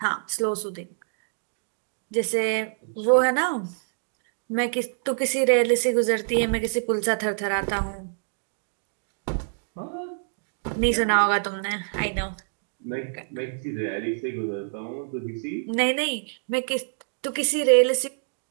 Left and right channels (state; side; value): silent; left; digital silence